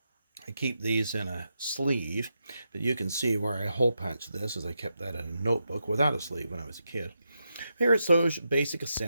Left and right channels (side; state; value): both; inverted; correlation -0.85